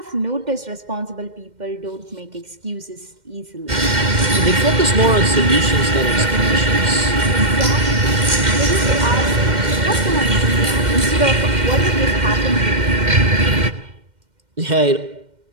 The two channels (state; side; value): late; left; 2.1 ms